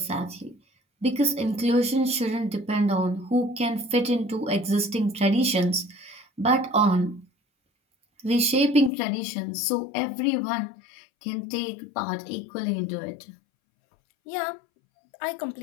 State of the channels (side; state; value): right; drops out; at 8.9 s